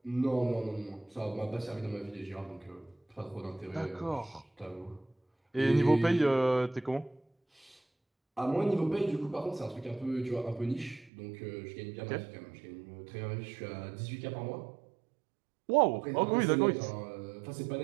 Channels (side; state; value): left; drops out; at 11.1 s